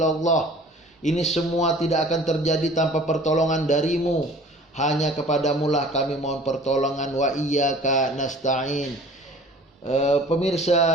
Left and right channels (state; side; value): normal; both; correlation 0.47